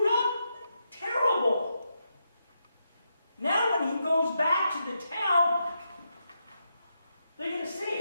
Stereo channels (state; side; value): inverted; both; correlation -0.84